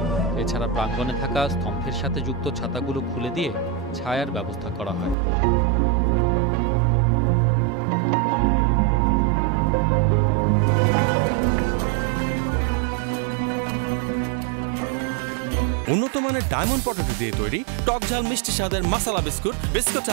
এছাড়া প্রাঙ্গণে থাকা স্তম্ভের সাথে যুক্ত ছাতাগুলো খুলে দিয়ে ছায়ার ব্যবস্থা করা হয়। উন্নত মানের ডায়মন্ড পটেটো দিয়ে তৈরি টক ঝাল মিষ্টি স্বাদের মশলা বিস্কুট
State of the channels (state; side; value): drops out; left; at 5.2 s